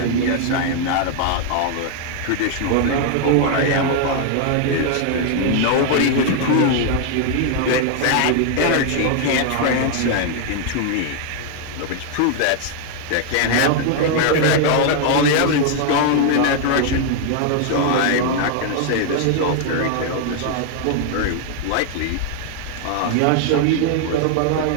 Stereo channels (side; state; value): both; different; correlation 0.00